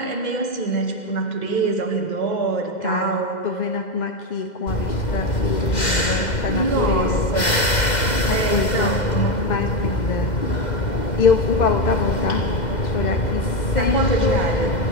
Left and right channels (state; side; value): late; right; 2.0 ms